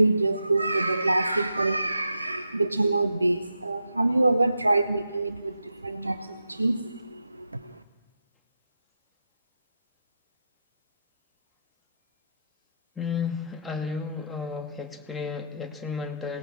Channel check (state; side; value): inverted; both; correlation -0.81